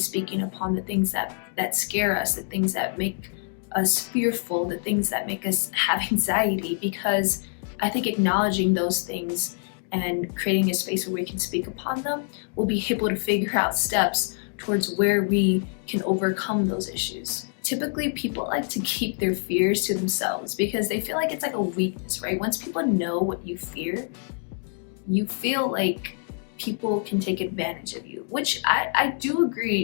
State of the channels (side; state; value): right; silent; 57 dB below the other